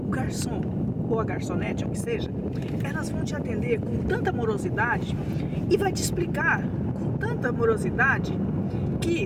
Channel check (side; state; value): both; identical; correlation 1.00